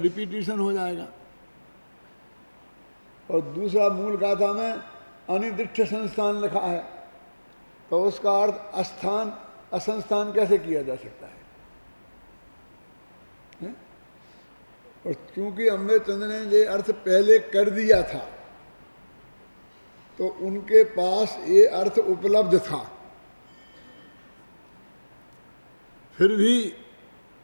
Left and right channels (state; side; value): inverted; both; correlation -1.00